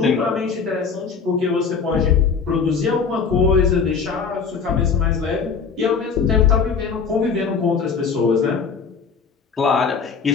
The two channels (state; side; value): quieter; right; 5.6 dB